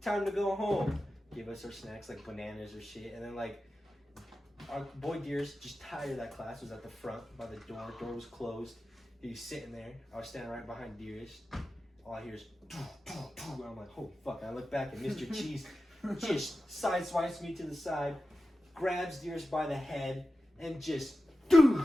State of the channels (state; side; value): normal; both; correlation 0.93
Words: time to go home. Give us our snacks like bananas or shit. And then like our boy Deers, just tired of that class, was at the front by the door. Door was closed. He was sitting there. I was standing right behind Deers. All I hear is, and I'm like, holy fuck. I look back and Mr. Cheese just sideswipes me to the side, grabs Deers by the head, and just,